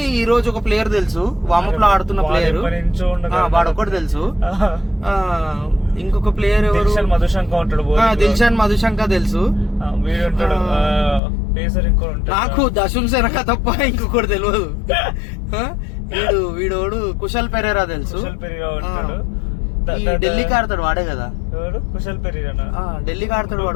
ఈ రోజు ఒక ప్లేయర్ తెలుసు, వామప్ లో ఆడుతున్న ప్లేయర్, వాడు ఒకటి తెలుసు. ఇంకొక ప్లేయర్ ఎవరు, దిల్షాన్ మధుశంక తెలుసు. నాకు దశున్ సెనక తప్ప ఇంకొకటి తెలియదు. వీడోడు కుశల్ పెరేరా తెలుసు, ఢిల్లీకి ఆడతాడు వాడే కదా, కుశల్ పెరేరా ఢిల్లీకి ఆడతాడు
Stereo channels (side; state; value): right; drops out; at 11.2 s